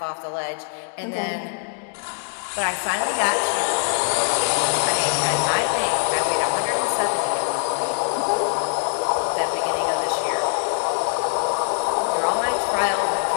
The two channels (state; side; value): silent; right; digital silence